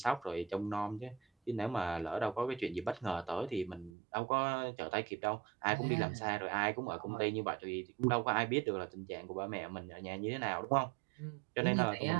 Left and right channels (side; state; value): left; drops out; at 3.9 s